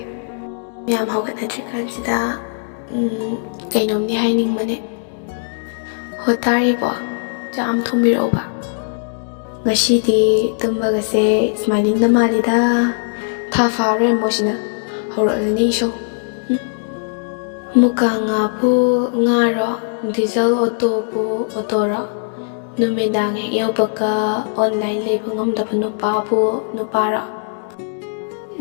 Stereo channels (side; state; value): right; silent; digital silence